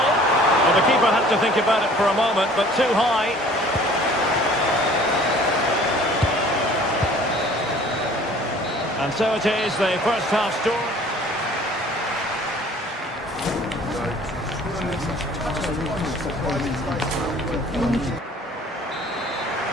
the keeper had to think about it for a moment, but too high. And so it is, the first half score.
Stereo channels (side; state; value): both; normal; correlation 0.51